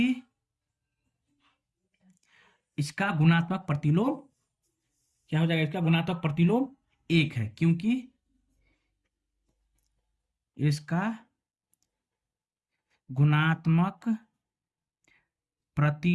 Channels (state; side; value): identical; both; correlation 1.00